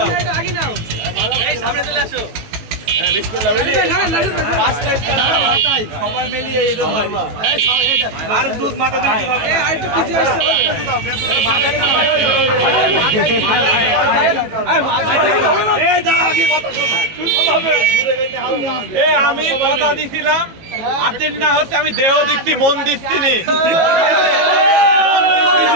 সবাই মিলিয়ে আর দুধ মাথা আমি কথা দিছিলাম আর্জেন্টিনা হচ্ছে, আমি দেহ দিচ্ছি মন দিচ্ছি নি।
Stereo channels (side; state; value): left; late; 18 ms